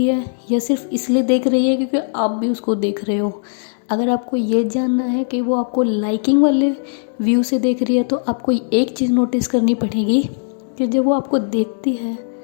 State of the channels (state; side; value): silent; right; digital silence